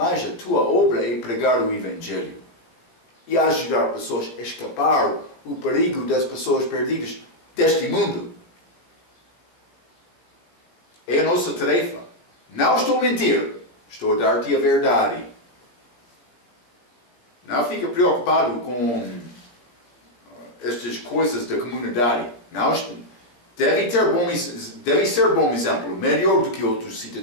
a tua obra é pregar o Evangelho. E ajudar pessoas a escapar o perigo das pessoas perdidas deste mundo. É a nossa tarefa. Não estou a mentir. Estou a dar-te a verdade. Não fica preocupado com estas coisas da comunidade. Não, deve ser bom exemplo. Melhor do que outros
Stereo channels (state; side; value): late; right; 17 ms